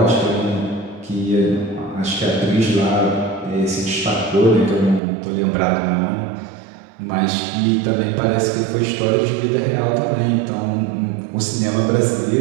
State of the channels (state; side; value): drops out; left; at 5.0 s